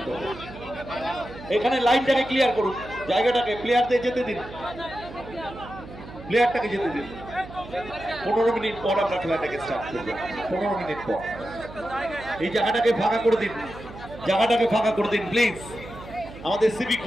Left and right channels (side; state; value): right; noise; hum, 15 dB below the sound